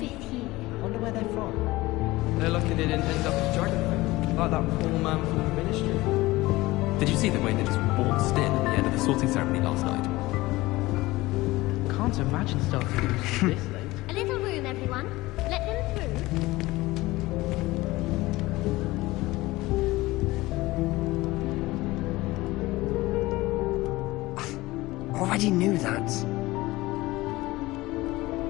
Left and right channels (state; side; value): quieter; right; 19.5 dB